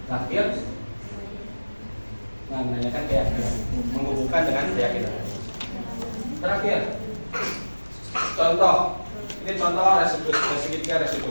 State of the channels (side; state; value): both; inverted; correlation -1.00